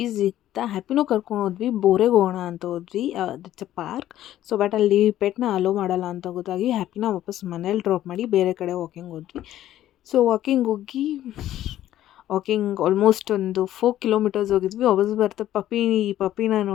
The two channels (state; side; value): quieter; right; 12.9 dB